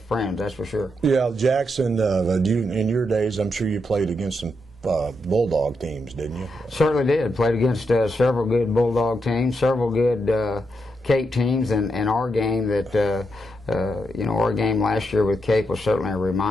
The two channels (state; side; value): normal; both; correlation 0.82